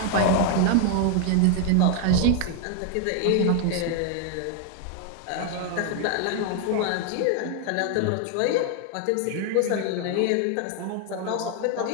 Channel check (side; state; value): both; different; correlation 0.00